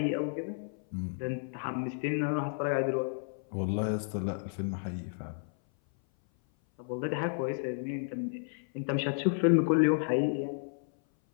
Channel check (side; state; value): right; silent; 56 dB below the other